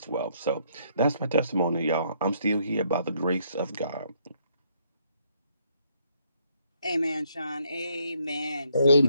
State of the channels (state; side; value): inverted; both; correlation -0.70